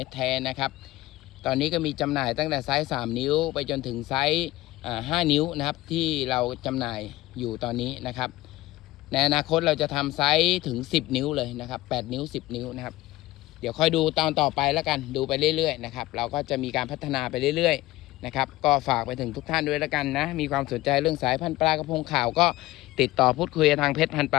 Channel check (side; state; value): right; quieter; 17.8 dB